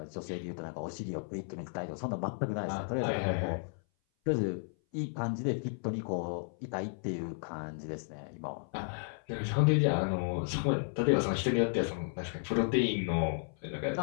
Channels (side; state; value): right; silent; 55 dB below the other